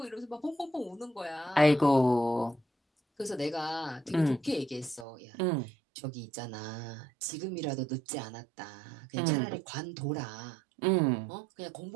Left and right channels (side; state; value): left; drops out; at 5.1 s